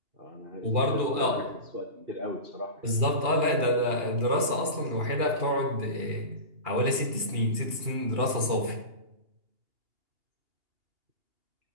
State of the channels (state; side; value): late; left; 2.8 ms